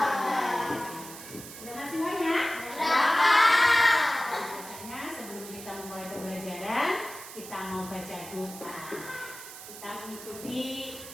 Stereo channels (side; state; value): right; noise; hiss, 13 dB below the sound